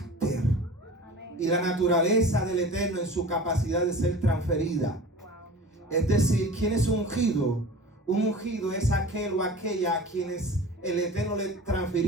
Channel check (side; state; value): both; normal; correlation 0.39